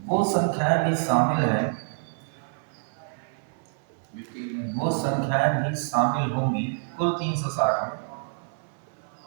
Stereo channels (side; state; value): left; silent; 60 dB below the other